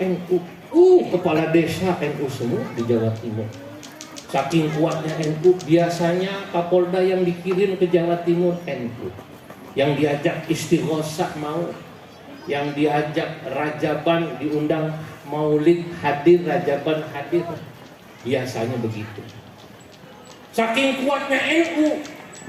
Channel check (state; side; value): identical; both; correlation 1.00